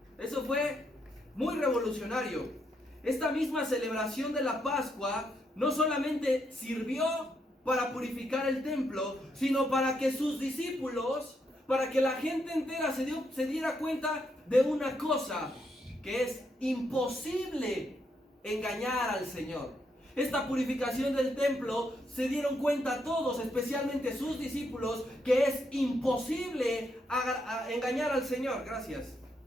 Eso fue muy revolucionario. Esta misma celebración de la Pascua no solamente sirvió para purificar el templo, sino para que sus discípulos, para que la gente entera se diera cuenta de una cosa, que es imposible engañar al Señor. Esta purificación del templo se dieron cuenta todos, especialmente sus discípulos, que es imposible engañar al Señor. Gracias.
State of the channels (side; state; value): both; normal; correlation 0.78